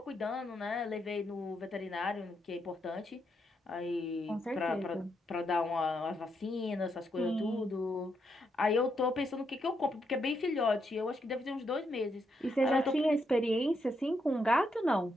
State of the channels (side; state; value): both; normal; correlation 0.79